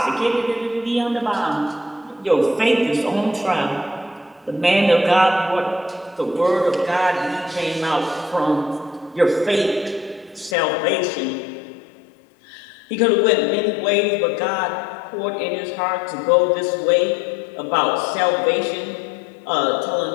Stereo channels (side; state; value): right; drops out; at 10.6 s